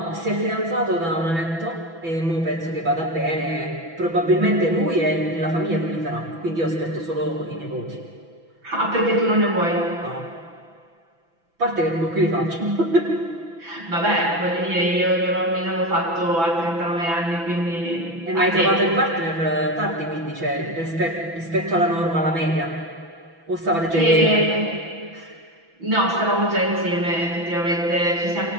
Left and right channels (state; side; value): late; left; 6.0 ms